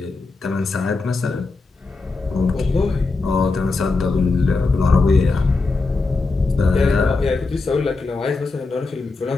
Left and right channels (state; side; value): quieter; right; 3.8 dB